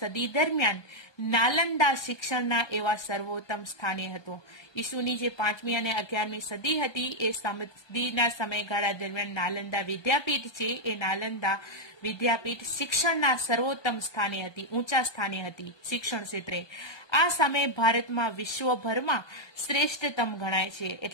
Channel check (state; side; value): late; right; 1.2 ms